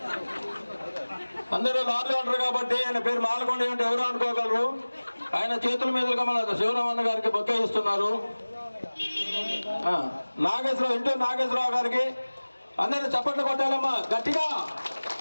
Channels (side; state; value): both; inverted; correlation -1.00